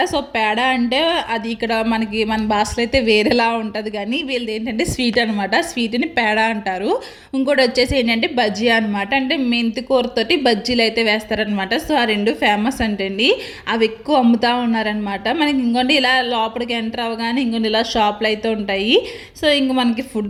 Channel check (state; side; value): identical; both; correlation 1.00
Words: సో పేడ అంటే అది ఇక్కడ మనకి మన భాషలో అయితే వేరేలా ఉంటుంది, కానీ వీళ్ళది ఏంటంటే స్వీట్ అనమాట. స్వీట్ని పేడ అంటారు. ఇంకోటి వచ్చేసి ఏంటంటే బజ్జీ అనమాట, అంటే మెంతి కూరతోటి బజ్జీలు అయితే వేస్తారనమాట. సో ఆ 2 ఫేమస్ అంటండి, అవి ఎక్కువ అమ్ముతూ ఉన్నారనమాట. మనకి ఇంకోటి ఇలా లోపలికి ఎంటర్ అవ్వగానే ఇంకోటి ఇలా షాప్లు అయితే ఉంటాయి. సో ఇంక మనకి